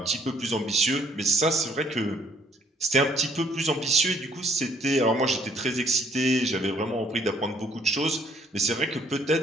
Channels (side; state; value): both; normal; correlation 0.65